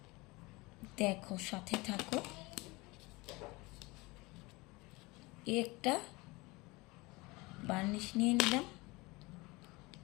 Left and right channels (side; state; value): right; quieter; 23.6 dB